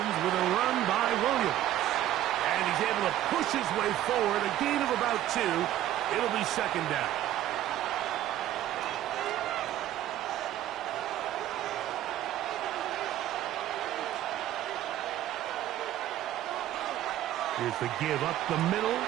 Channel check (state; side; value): quieter; left; 13.0 dB